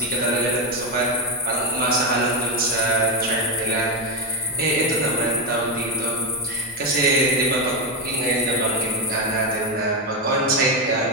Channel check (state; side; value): normal; both; correlation 0.08